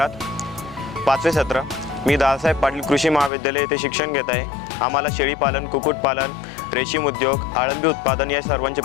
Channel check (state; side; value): drops out; right; at 3.3 s